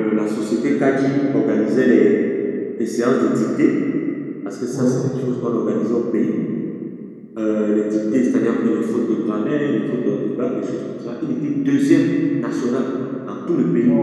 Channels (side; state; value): both; identical; correlation 1.00